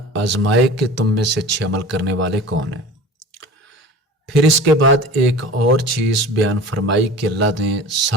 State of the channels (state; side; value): normal; both; correlation 0.38